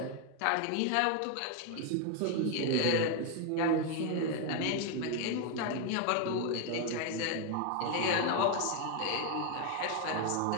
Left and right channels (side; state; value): both; different; correlation 0.01